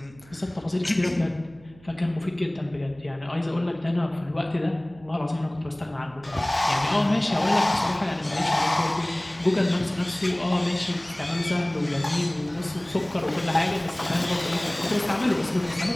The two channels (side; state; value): right; noise; hum, 24 dB below the sound